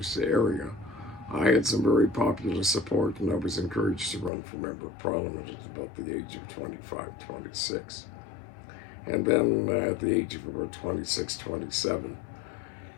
area, I had some very popular support, and I was encouraged to run for member of parliament at about the age of 25, 26. And then at the age of about 26, 27,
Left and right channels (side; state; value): right; drops out; at 4.3 s